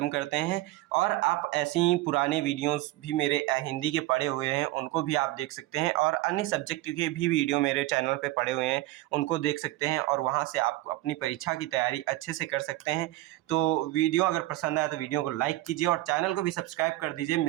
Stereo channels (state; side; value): quieter; left; 17.6 dB